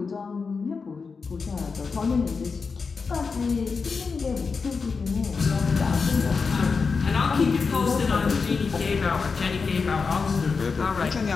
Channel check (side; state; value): right; quieter; 4.9 dB